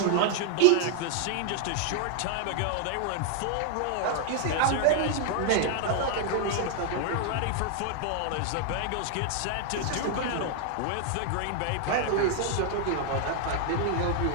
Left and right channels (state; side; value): different; both; correlation 0.00